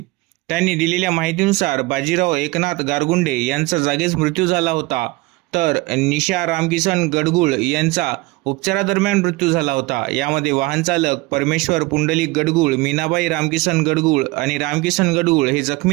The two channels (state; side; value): quieter; left; 22.4 dB